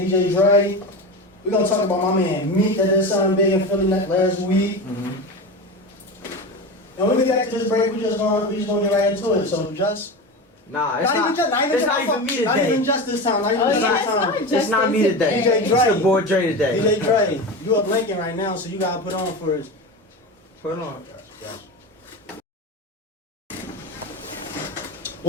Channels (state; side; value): normal; both; correlation 0.24